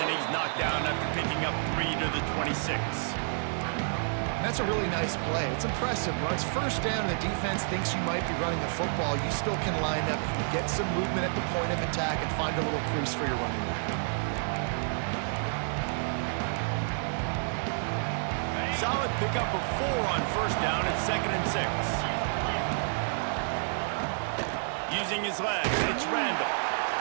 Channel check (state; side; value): silent; left; digital silence